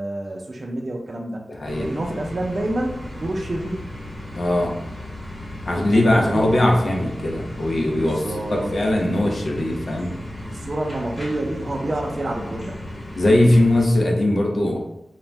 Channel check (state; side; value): normal; both; correlation 0.95